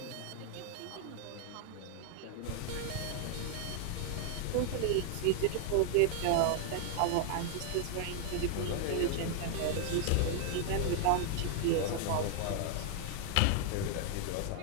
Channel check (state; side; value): different; both; correlation 0.00